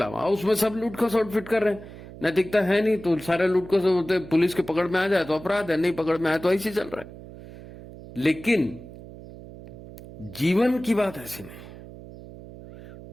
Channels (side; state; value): right; noise; hum, 16 dB below the sound